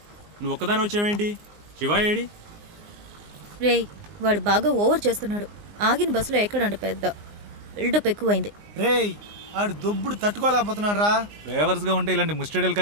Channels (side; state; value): left; late; 19 ms